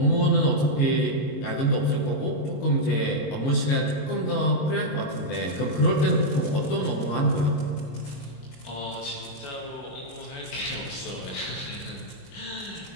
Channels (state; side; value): late; right; 22 ms